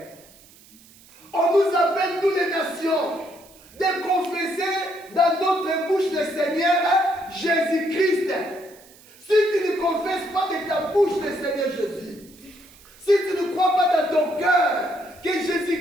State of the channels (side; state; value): right; noise; hiss, 25 dB below the sound